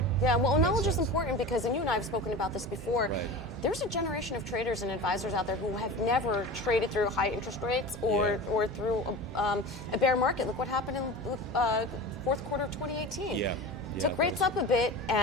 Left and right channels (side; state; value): both; normal; correlation 0.32